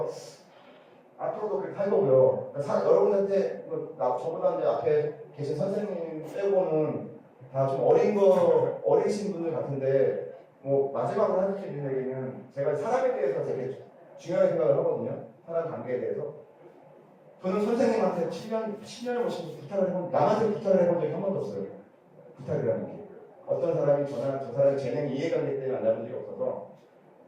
앞으로도 그렇게 할 거고요. 여러분한테 저보다 이제 앞에 계신 선생님 빼고는 다 좀 어리신 분들 같은데 뭐 마지막으로 하실 수 있는 얘기는 제가 사람에 대해서 되게 중요하게 생각을 하거든요. 사람 관계에 대해서. 저는 선생님한테 10년을 모시면서 남한테 부탁을 해본 적이 한 번도 없어요. 부탁이라는 게. 어떤 사람이 저 사람의 재능이 이해관계 때문에 만나본 적이 없어서.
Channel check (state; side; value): identical; both; correlation 1.00